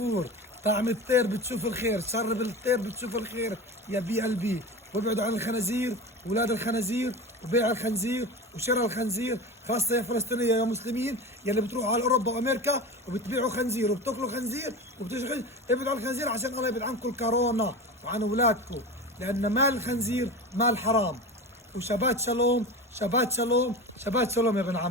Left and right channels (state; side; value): normal; both; correlation 0.29